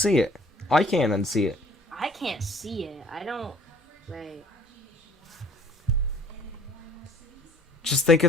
it. I can't unsee it. I can't see it. I don't. Wait. Just think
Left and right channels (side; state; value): both; normal; correlation 0.55